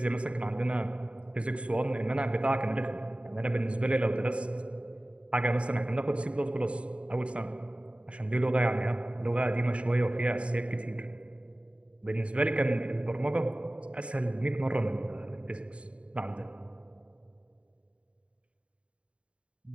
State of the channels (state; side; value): late; left; 0.060 ms